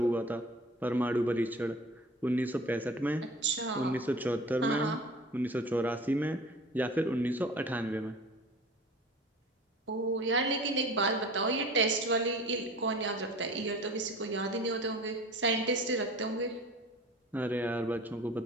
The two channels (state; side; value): normal; both; correlation 0.41